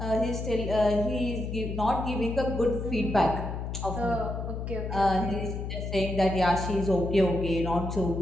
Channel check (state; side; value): noise; left; hum, 5 dB below the sound